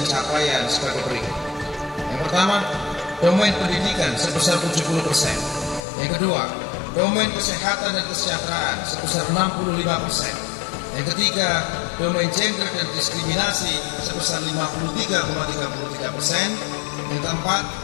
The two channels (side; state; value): right; drops out; at 5.9 s